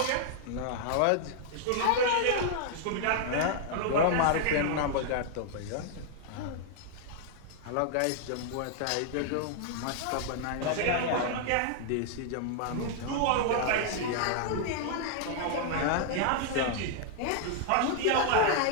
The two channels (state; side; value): different; both; correlation -0.01